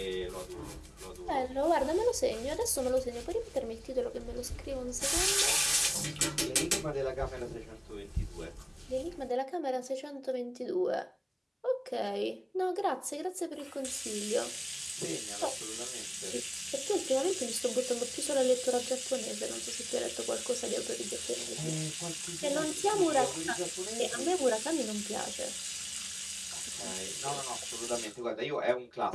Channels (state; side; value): identical; both; correlation 1.00